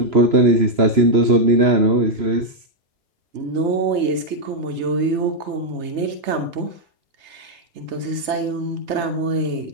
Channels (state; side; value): late; left; 3.3 ms